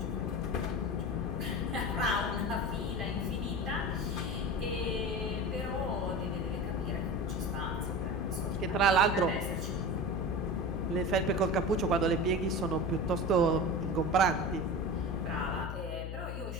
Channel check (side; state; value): left; noise; hum, 5 dB below the sound